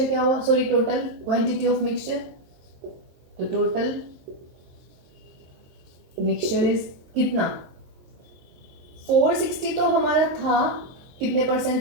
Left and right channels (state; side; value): late; left; 23 ms